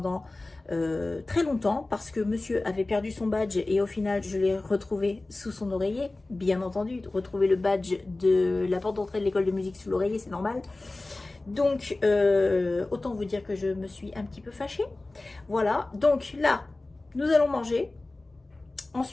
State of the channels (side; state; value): right; quieter; 3.0 dB